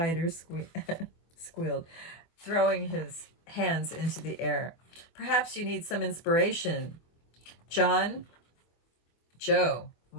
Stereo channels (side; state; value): right; late; 24 ms